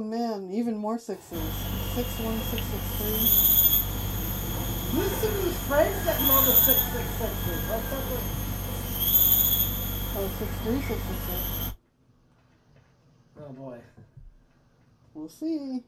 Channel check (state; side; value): identical; both; correlation 1.00